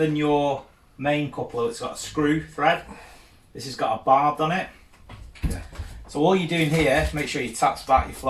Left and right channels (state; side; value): identical; both; correlation 1.00